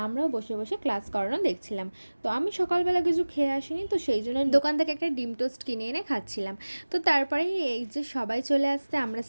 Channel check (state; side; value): inverted; both; correlation -1.00